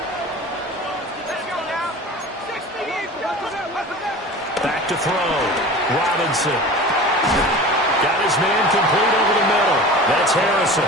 Back to throw. Robinson. Got his man complete over the middle. That's Harrison.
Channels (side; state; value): both; normal; correlation 0.37